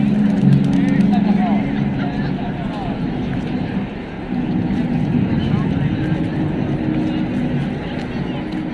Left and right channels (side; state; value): both; identical; correlation 1.00